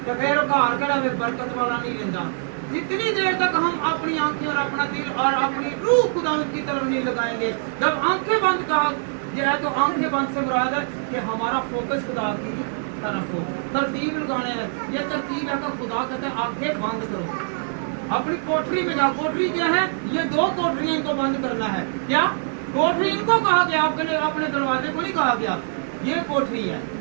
तो फिर घर कड़ा में बरकत वाला नहीं लेंदा। जितनी देर तक हम अपनी आंखें और अपना दिल और अपनी रूह खुदा की तरफ नहीं लगाएंगे, जब आंखें बंद कहा गया तो आंखें बंद से मुराद है कि हमारा फोकस खुदा की तरफ हो। तरतीब लगाने है, ये तरतीब है तो खुदा कहते हैं आंखें बंद करो, अपनी कोठरी में जाओ। कोठरी क्या है? ये 2 कोठरियां इनको बंद करना है। क्या कोठरी? इनको कहा गया, अपने दरवाजे को नहीं कहा गया, ये कोठरी है,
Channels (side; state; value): left; silent; 62 dB below the other